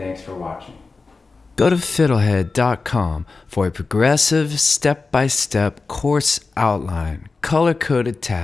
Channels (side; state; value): right; quieter; 4.1 dB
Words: for watching. Go to FiddleHed.com for a progressive, step-by-step course outline, color-coded